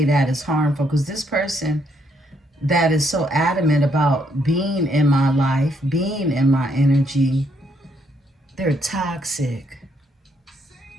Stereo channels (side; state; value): both; normal; correlation 0.73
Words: that is harmful, because this person that is so adamant about being in my life, being in my energy, they're toxic.